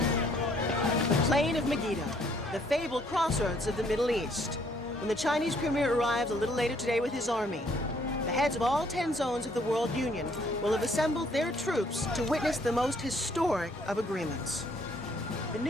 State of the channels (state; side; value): normal; both; correlation 0.65